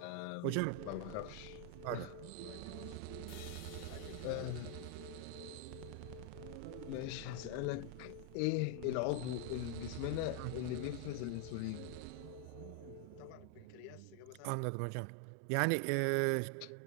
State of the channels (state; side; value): different; both; correlation 0.00